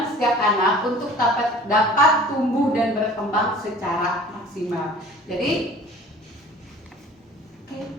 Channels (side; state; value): both; normal; correlation 0.46